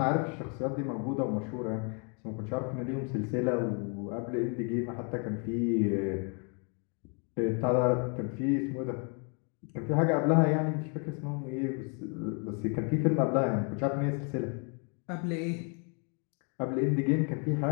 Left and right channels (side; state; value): right; quieter; 38.0 dB